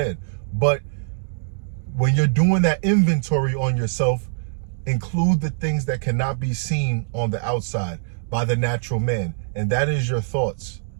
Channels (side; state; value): left; silent; digital silence